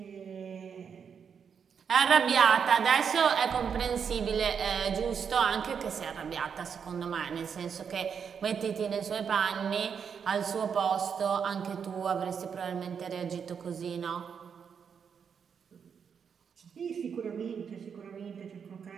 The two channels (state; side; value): quieter; left; 6.9 dB